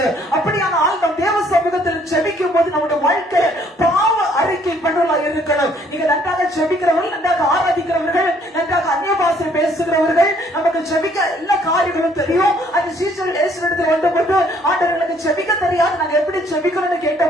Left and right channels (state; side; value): normal; both; correlation 0.63